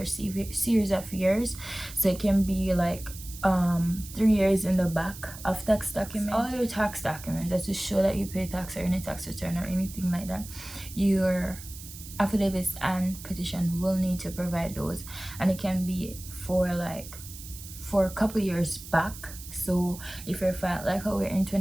series of years. So it can be like 3 years in the back of tax documents. All your tax documents that to show that you pay tax or any tax return or anything like that, your affidavits and petition will need to provide those, and it can be for a couple years back. So if you're like how we're in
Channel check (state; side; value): noise; right; hiss, 14 dB below the sound